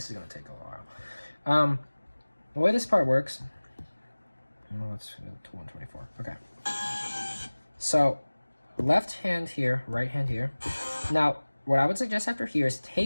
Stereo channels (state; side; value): inverted; both; correlation -1.00